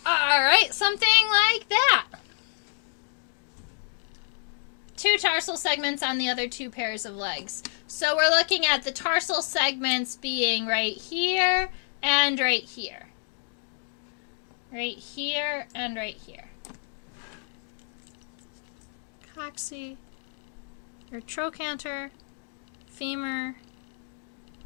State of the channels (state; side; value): silent; right; digital silence